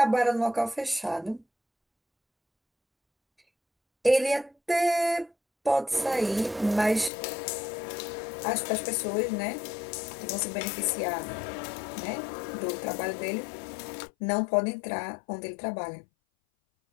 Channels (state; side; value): drops out; right; at 7.1 s